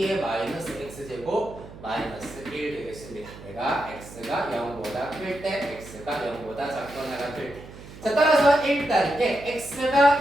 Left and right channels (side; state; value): right; noise; hum, 16 dB below the sound